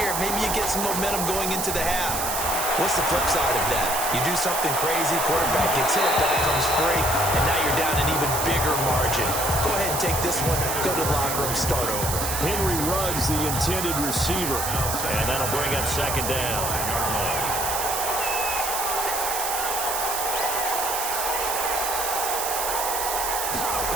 Maybe you get some momentum going into the half. What's the flip side of that? You do something crazy, quarterback gets hit, ball comes free, and now you're down an even bigger margin. Go ahead and take this one, go to the locker room, start over. Henry Ruggs, the intended receiver, and that'll bring up second down.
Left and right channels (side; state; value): right; noise; hiss, 2 dB below the sound